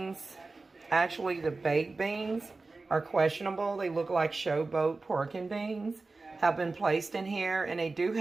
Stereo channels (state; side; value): quieter; left; 3.6 dB